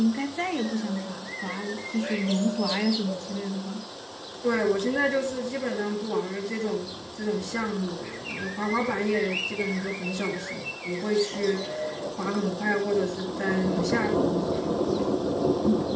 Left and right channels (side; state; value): both; identical; correlation 1.00